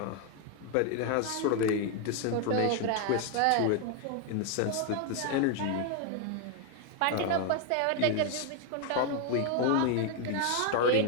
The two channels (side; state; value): both; different; correlation 0.01